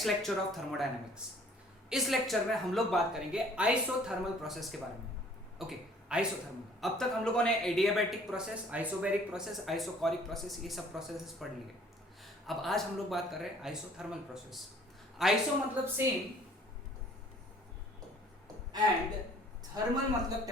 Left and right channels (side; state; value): both; normal; correlation 0.56